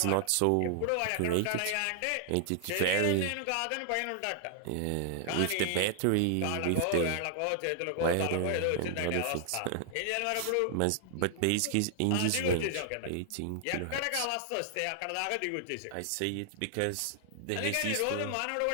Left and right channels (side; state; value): both; different; correlation 0.00